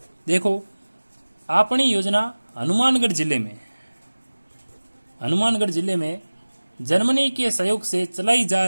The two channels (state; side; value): inverted; both; correlation -1.00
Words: देखो आपनी योजना हनुमानगढ़ जिले में जर्मनी के सहयोग से चलाई जा